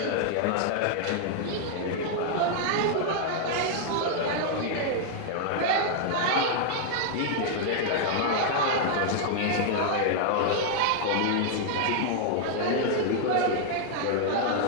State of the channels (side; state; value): both; different; correlation 0.00